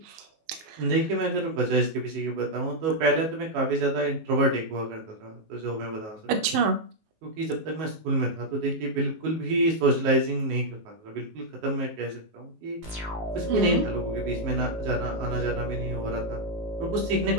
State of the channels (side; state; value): left; late; 19 ms